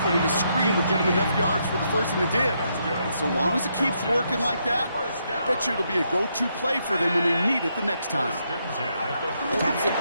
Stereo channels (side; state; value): both; inverted; correlation -0.78